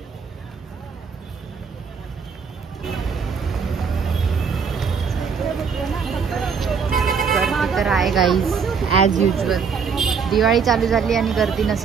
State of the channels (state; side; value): quieter; left; 6.0 dB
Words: गर्दी तर आहे गाईज, ॲज युजल. दिवाळी चालू झाली आणि गर्दी